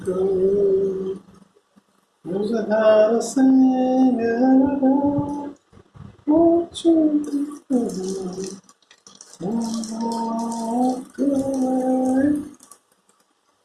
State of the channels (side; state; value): both; identical; correlation 1.00